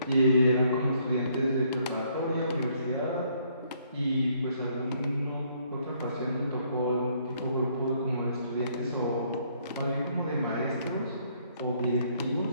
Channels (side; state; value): both; inverted; correlation -0.68